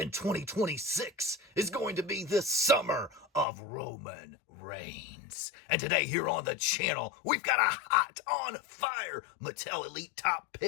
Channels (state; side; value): drops out; right; at 3.5 s